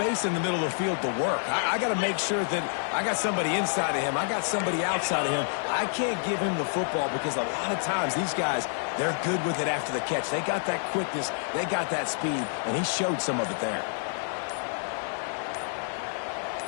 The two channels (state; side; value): silent; right; digital silence